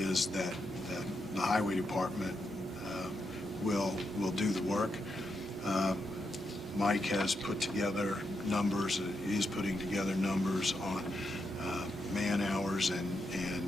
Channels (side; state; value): both; normal; correlation 0.83